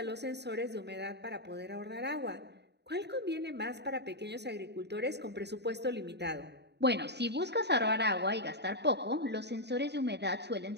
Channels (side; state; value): left; late; 0.49 ms